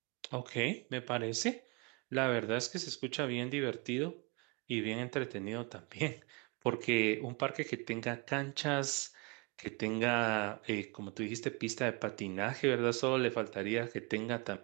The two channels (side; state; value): left; quieter; 29.9 dB